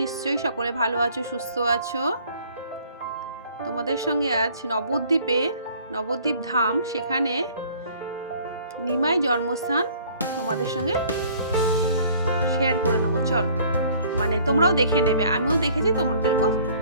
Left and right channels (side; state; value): both; inverted; correlation -0.55